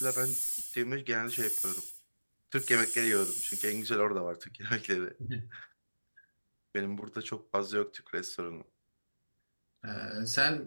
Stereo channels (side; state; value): both; inverted; correlation -1.00